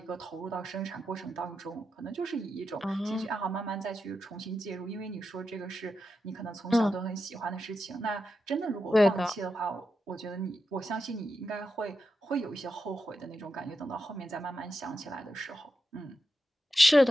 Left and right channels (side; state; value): both; normal; correlation 0.88